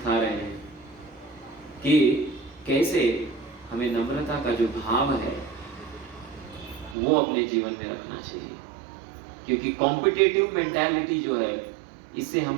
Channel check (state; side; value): drops out; left; at 7.0 s